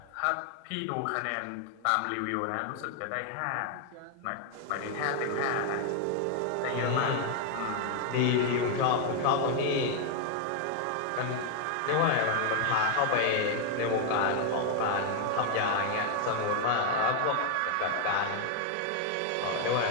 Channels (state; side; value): different; both; correlation 0.00